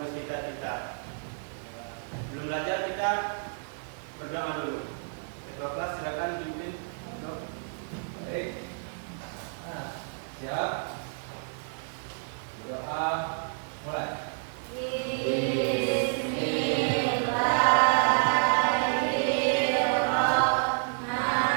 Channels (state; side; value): silent; left; digital silence